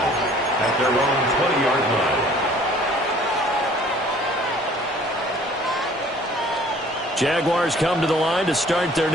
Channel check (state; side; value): normal; both; correlation 0.53